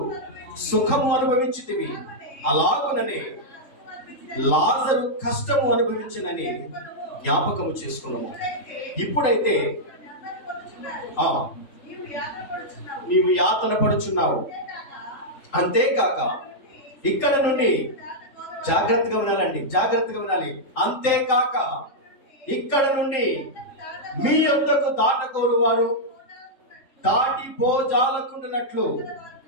సుఖము అనుభవించితివి, అలాగుననే లాజరు కష్టము అనుభవించినని జ్ఞాపకము చేసుకున్నాము. ఇప్పుడైతే నీవు యాతన పడుచున్నావు. అంతేకాక ఇక్కడ నుండి జాగ్రత్తగా వినాలండి, జాగ్రత్తగా వినాలి. అంతేకాక ఇక్కడ నుండి మీ యొద్దకు దాటకోరు వారు దాటిపోజాలకుండునట్లు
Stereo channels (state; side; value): late; right; 3.7 ms